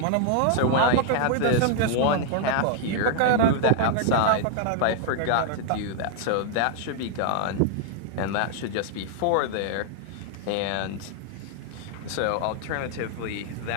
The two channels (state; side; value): different; both; correlation 0.00